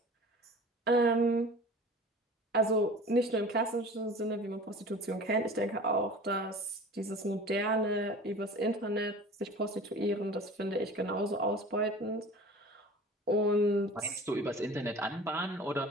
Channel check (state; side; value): normal; both; correlation 0.40